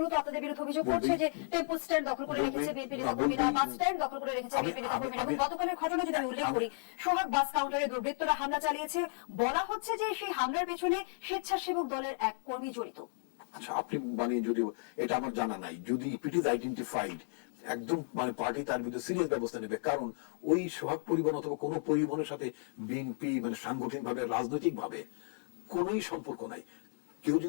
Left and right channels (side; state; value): right; silent; digital silence